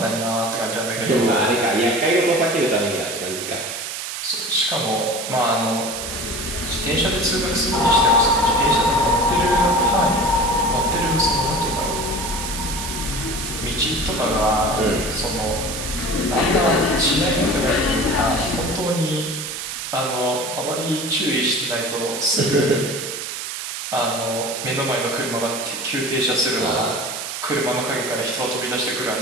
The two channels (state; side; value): noise; right; hiss, 6 dB below the sound